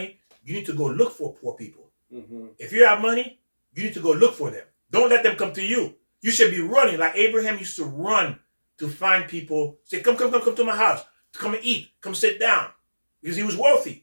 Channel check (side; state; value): both; inverted; correlation -1.00